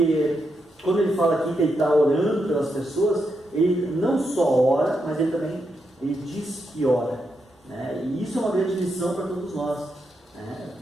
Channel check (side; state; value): both; normal; correlation 0.83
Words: quando ele fala aqui que ele está orando pelas pessoas, ele não só ora, mas ele diz que ora. Né? E isso é uma grande lição para todos nós. Né?